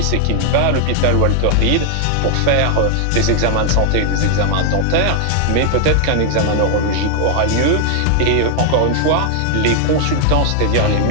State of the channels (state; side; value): different; both; correlation 0.00